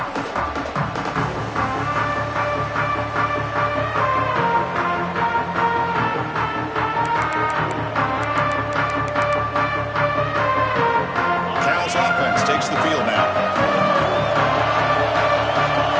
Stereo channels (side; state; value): both; identical; correlation 1.00